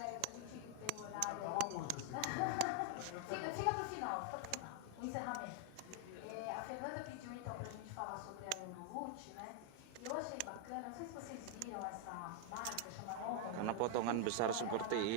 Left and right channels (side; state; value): both; different; correlation 0.00